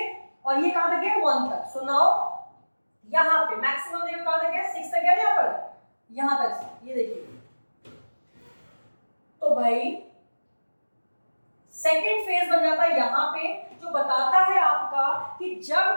और ये कहां तक है 1 तक। सो नाउ यहां पे मैक्सिमम देखो कहां तक है, 6 तक है, यहां पर यहां तक, ये देखिए। तो भाई सेकेंड फेज बन जाता है यहाँ पे, जो बताता है आपका कि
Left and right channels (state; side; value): inverted; both; correlation -1.00